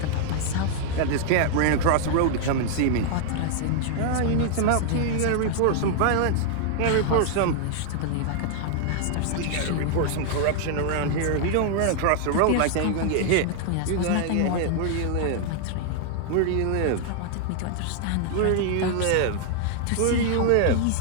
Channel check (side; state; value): both; different; correlation 0.00